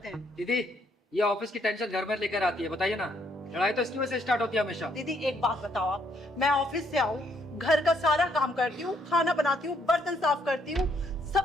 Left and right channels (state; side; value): normal; both; correlation 0.71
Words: हैं। दीदी ये ऑफिस की टेंशन घर में लेकर आती है, बताइए ना। लड़ाई तो इसकी वजह से स्टार्ट होती है हमेशा। दीदी एक बात बताओ आप, मैं ऑफिस से आऊँ, घर का सारा काम करती हूँ, खाना बनाती हूँ, बर्तन साफ करती हूँ,